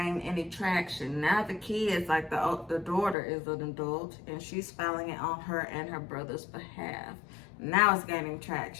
any traction. Now the kids, like the daughter is an adult, and she's filing it on her and her brother's behalf. Now it's gaining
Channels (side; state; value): right; drops out; at 3.2 s